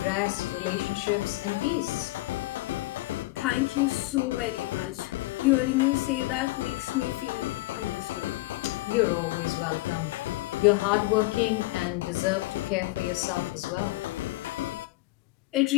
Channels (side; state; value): right; quieter; 20.1 dB